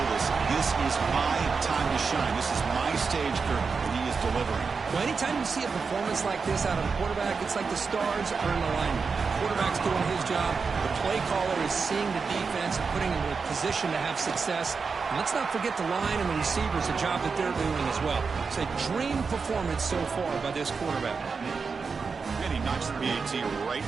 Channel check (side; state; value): left; quieter; 5.1 dB